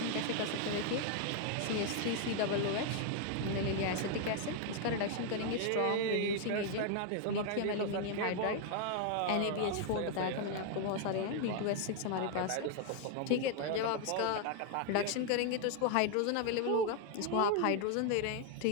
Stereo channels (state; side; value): different; both; correlation 0.00